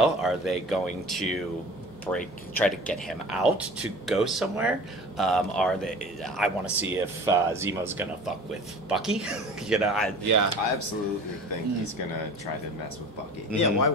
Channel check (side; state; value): both; normal; correlation 0.41